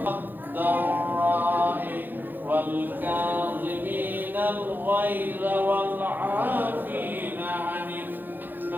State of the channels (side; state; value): left; late; 0.089 ms